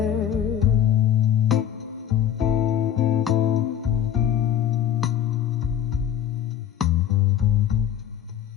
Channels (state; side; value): quieter; right; 9.9 dB